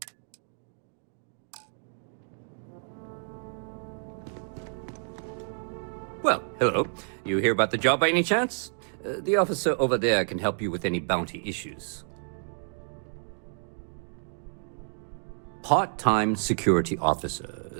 Well, hello. You hear about the job by any chance? The officer over there can help you with any bounty issues. Part-time security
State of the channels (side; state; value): left; silent; 58 dB below the other